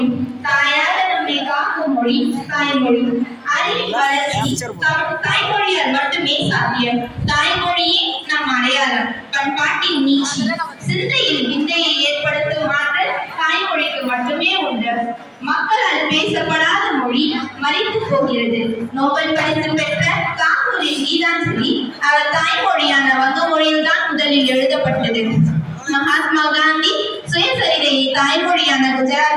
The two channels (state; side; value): identical; both; correlation 1.00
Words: தாயாக நம்மை காக்கும் மொழி தாய்மொழி. அறிவின் வளர்ச்சி தாய்மொழியால் மட்டுமே சாத்தியம். தாய்மொழியே நம் அடையாளம். பண்பாட்டின் நீட்சி சிந்தையில் விந்தையை ஏற்படுத்தும் ஆற்றல் தாய்மொழிக்கு மட்டுமே உண்டு. மக்களால் பேசப்படாத மொழி மறைத்து போகிறது. நோபல் பரிசு பெற்ற தாகூரின் கீதாஞ்சலி அவர் தாய்மொழியான வங்க மொழியில் தான் முதலில் எழுதப்பட்டது. மகாத்மா காந்தி சுயசரிதையை தாய்மொழியான